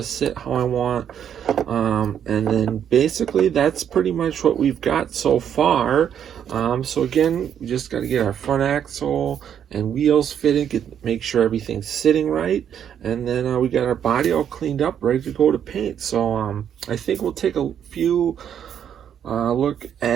sit how I want. And then basically that's pretty much what we've got so far. So again, we just got to get our front axle and wheels fitted, make sure everything's sitting right, and then we got our body all cleaned up, ready to go to paint. So I think we'll take a few look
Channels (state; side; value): quieter; left; 9.0 dB